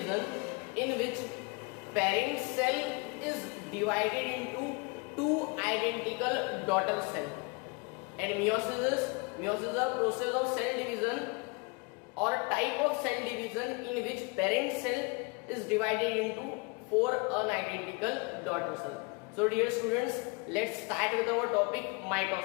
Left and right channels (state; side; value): quieter; right; 30.2 dB